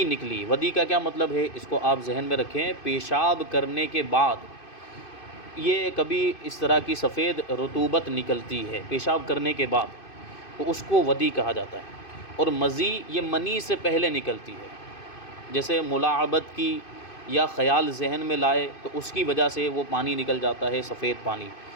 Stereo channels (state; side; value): late; right; 2.5 ms